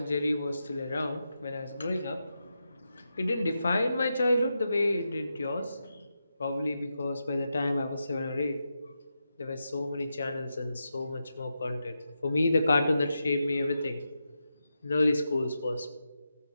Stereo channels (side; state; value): both; inverted; correlation -0.87